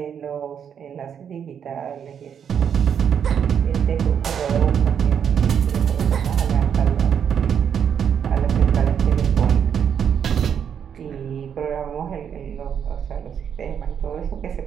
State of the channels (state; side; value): quieter; left; 8.0 dB